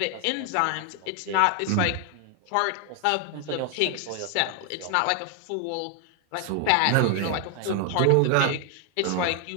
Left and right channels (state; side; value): different; both; correlation 0.01